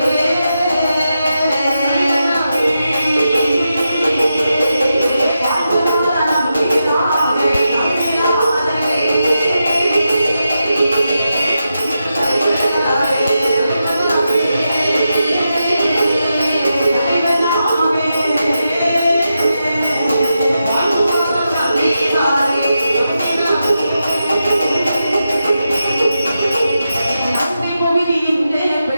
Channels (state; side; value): inverted; both; correlation -0.88